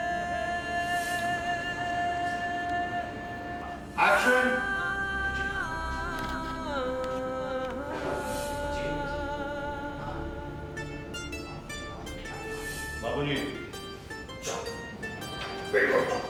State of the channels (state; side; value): identical; both; correlation 1.00